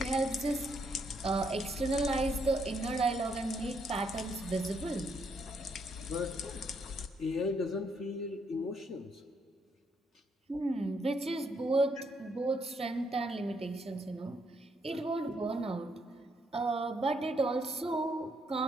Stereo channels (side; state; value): both; normal; correlation 0.74